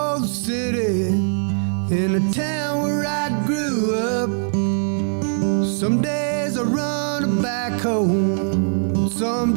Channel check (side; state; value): left; silent; digital silence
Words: the city in a town where I grew up. Some days I run a backhoe,